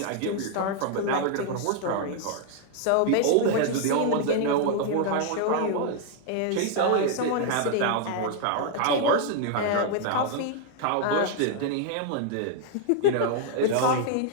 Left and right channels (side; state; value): both; different; correlation 0.00